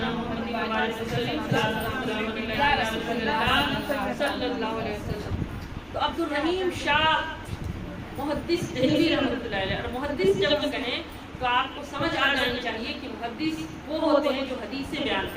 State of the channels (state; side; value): identical; both; correlation 1.00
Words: محمد و بارک وسلم صلی اللہ علیہ وسلم۔ تو عبدالرحیم شاہ محدث دہلوی رحمۃ اللہ علیہ، اور محدث جب کہیں تو آپ کو سمجھ آ جانی چاہیے کہ محدث وہ ہوتے ہیں جو حدیث سے بیان